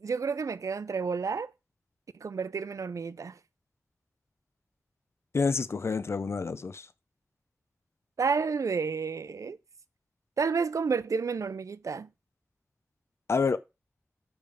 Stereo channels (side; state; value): both; normal; correlation 0.72